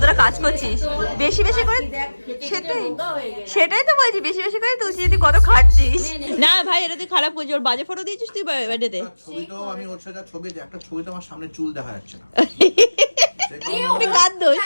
কাজ করছিস, বেশি বেশি করে। সেটাই সেটাই তো বলছি, বেশি বেশি করে তুলছি, তুই কত খাটছিস। না ভাই এটা তুই খারাপ করছিস, ওর বাজে ফটো দিয়েছিস তুই বার্থডেতে। ছবিতেও আমি ওর সাথে ছবি, একটা ছবিতে আমার সামনে চুল দেখা যাচ্ছে না। কার দোষ?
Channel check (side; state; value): both; inverted; correlation -1.00